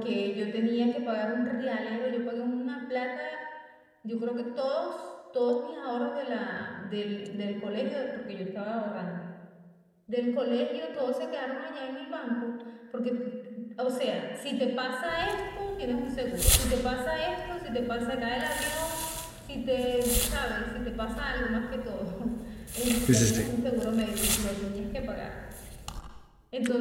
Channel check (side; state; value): both; identical; correlation 1.00